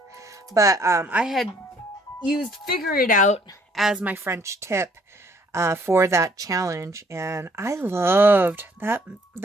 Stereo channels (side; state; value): both; normal; correlation 0.62